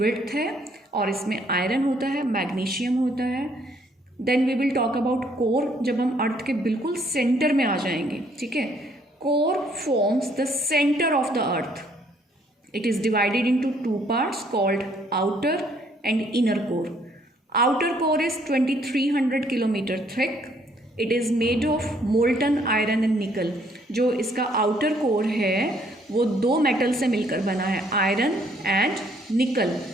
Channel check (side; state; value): both; normal; correlation 0.65